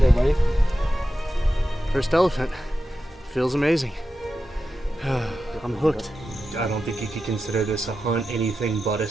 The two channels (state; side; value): normal; both; correlation 0.91